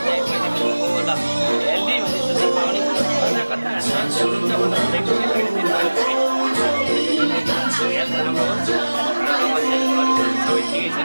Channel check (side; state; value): both; inverted; correlation -1.00